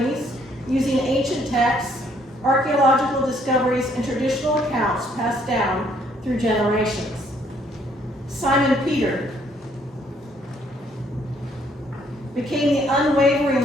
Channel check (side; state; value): both; normal; correlation 0.66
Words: using ancient texts, archaeological discoveries, and traditional accounts passed down through generations. Simon Peter became the